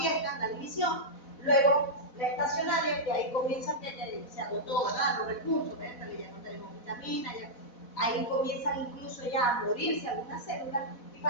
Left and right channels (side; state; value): right; late; 4.1 ms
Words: la división, luego la estacionaria, que ahí comienza que se agotó, ¿verdad? Los recursos, ¿verdad? Ya no tenemos vitaminas, ahí comienzan incluso ya a morirse algunas células, y